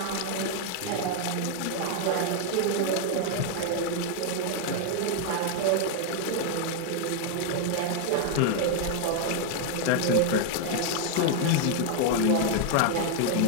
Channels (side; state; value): both; different; correlation 0.00